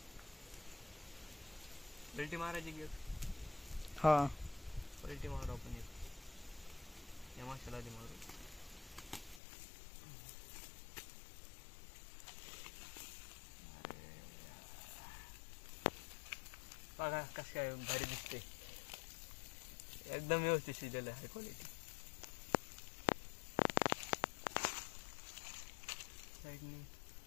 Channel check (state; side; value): drops out; right; at 9.4 s